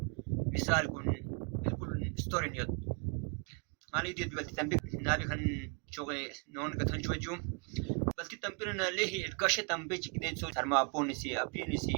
مثال كن بالكل ستوري نيوت مالي دي بلتي تمبيون نابي كان شوغي نون كتن شوجو بلتي تمبيون ليه الكشه تمبيج كده سو سرما بونسي ابينسي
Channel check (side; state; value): left; quieter; 35.8 dB